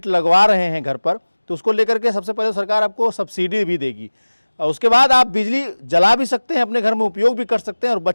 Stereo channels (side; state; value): both; inverted; correlation -1.00